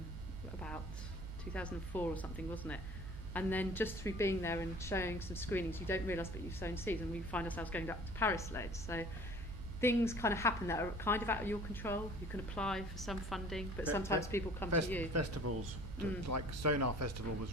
2004 or something, wasn't it? And then just through being there and showing some screenings, you don't realise that you've sown seeds, and we find ourselves going back to Paris loads. So things kind of happen that are kind of out of your control. You can apply for some funding, but sometimes people come to you. Festivals, like Sonar Festival was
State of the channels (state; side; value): normal; both; correlation 0.48